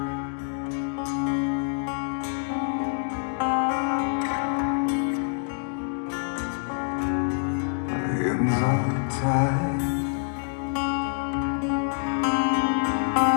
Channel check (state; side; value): silent; right; 61 dB below the other